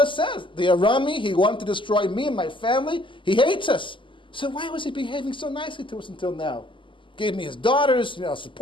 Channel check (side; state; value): right; late; 0.25 ms